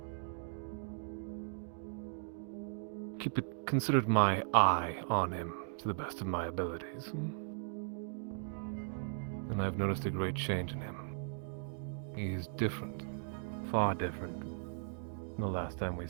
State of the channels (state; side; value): silent; left; digital silence